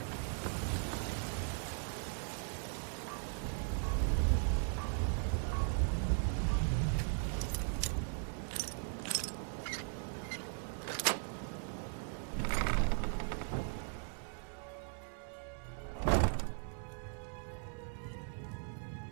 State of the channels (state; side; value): silent; left; 52 dB below the other